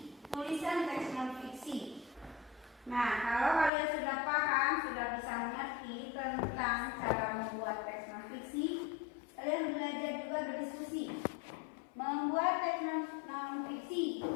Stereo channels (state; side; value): drops out; right; at 3.7 s